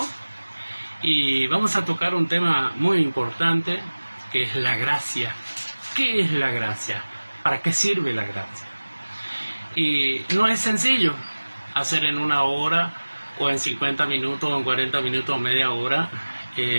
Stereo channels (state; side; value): inverted; both; correlation -1.00